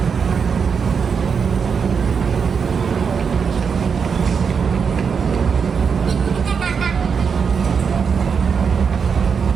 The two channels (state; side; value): quieter; left; 6.2 dB